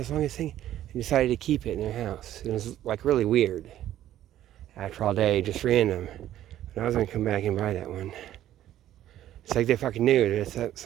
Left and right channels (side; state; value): left; quieter; 12.5 dB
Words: the longest thing, and decided to keep it in their house. It was like really weird. After all day, just random. But I was going to come back and buy that one. It's like they fucking knew that it's